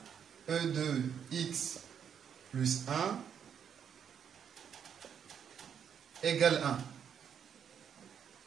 E de x plus 1 égale 1.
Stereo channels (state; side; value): quieter; left; 8.0 dB